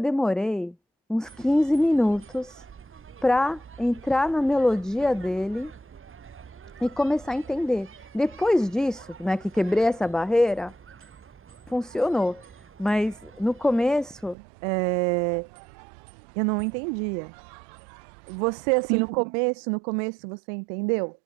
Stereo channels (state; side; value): drops out; left; at 14.4 s